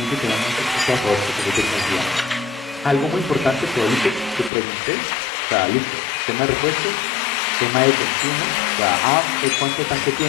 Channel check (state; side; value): drops out; right; at 4.5 s